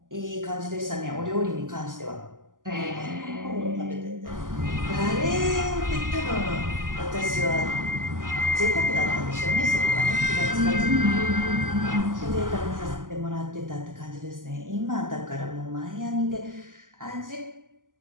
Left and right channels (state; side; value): late; left; 0.89 ms